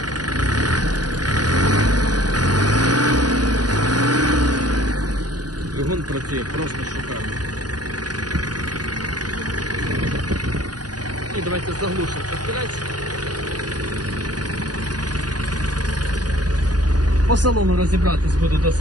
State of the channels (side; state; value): left; late; 0.69 ms